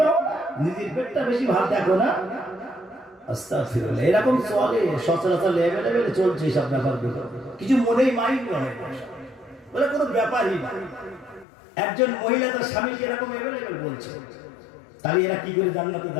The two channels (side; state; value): right; drops out; at 11.5 s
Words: না, নিজের পেটটা বেশি ভালো দেখো না। আস্তাগফিরুল্লাহ, এরকম চলে সচরাচর লেভেলে চলছে সব ব্যাপারগুলো, কিছু মনেই মাইন্ড নয়, বলে কোনো ব্যাপারই না। একজন মহিলা তার স্বামীকে এরকম এভেলেবেল বলছে, তাহলে এরা কি করে জান্নাতে